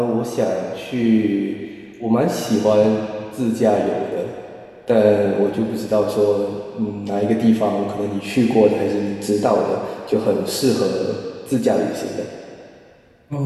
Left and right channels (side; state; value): both; identical; correlation 1.00